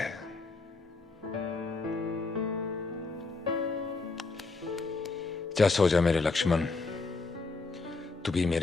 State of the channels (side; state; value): right; quieter; 3.9 dB